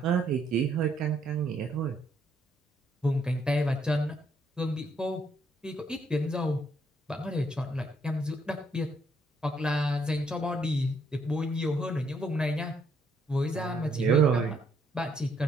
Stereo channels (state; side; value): normal; both; correlation 0.71